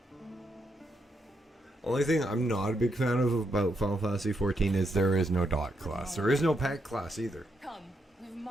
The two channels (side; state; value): both; normal; correlation 0.80